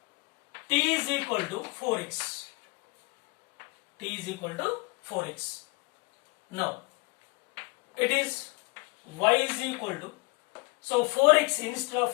t is equal to 4x. T is equal to 4x. Now it is y is equal to, so 4x, instead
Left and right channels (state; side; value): quieter; right; 27.8 dB